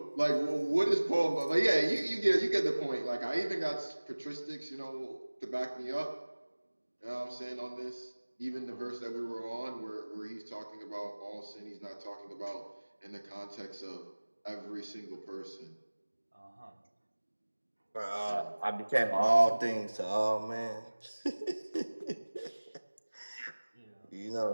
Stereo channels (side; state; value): both; inverted; correlation -1.00